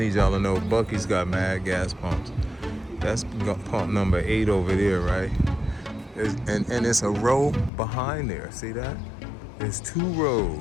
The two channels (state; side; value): drops out; right; at 7.7 s